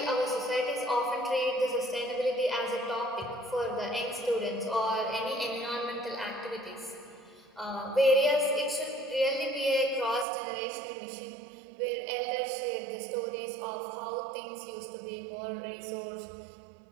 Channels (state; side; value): drops out; left; at 10.2 s